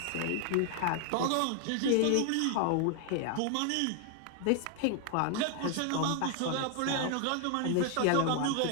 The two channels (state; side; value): different; both; correlation 0.00